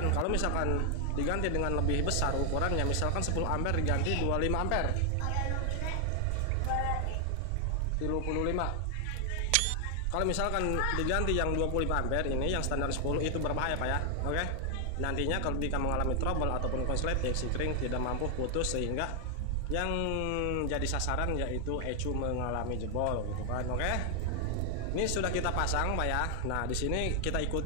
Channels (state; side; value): different; both; correlation 0.00